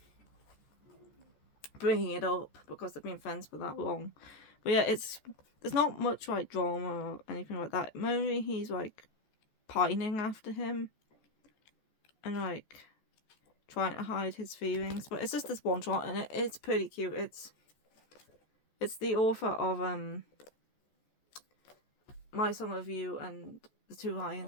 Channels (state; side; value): late; right; 14 ms